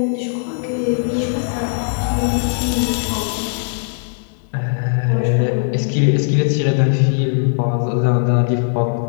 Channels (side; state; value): right; silent; 64 dB below the other